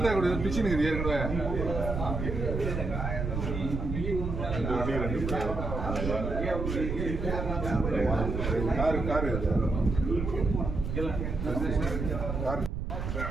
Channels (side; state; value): right; noise; rumble, 3 dB below the sound